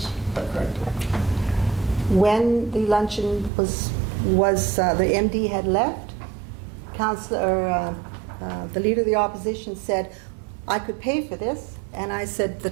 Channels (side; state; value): left; drops out; at 3.5 s